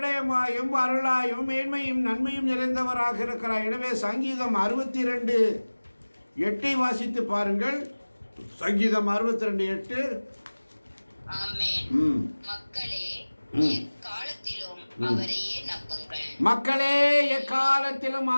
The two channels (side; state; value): both; inverted; correlation -1.00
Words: அருளாயும் மேன்மையும் நன்மையும் நிறைந்தவராக இருக்கிறார். எனவே சங்கீதம் 62:8 வாசித்து பாருங்கள். சங்கீதம் 62:8. மக்களே எக்காலத்திலும் அவரையே நம்புங்கள். மக்களே எக்காலத்திலும்